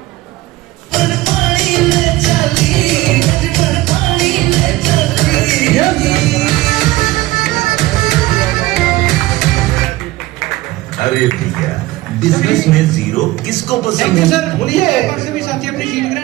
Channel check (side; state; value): left; quieter; 18.2 dB